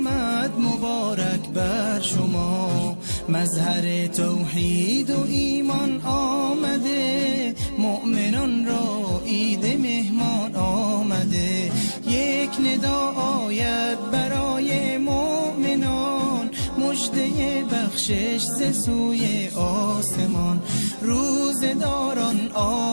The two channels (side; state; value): both; inverted; correlation -1.00